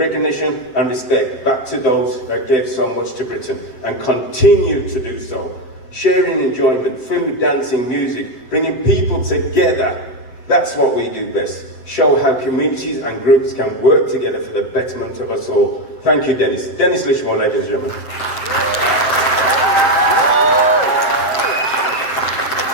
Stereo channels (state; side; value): late; right; 7.6 ms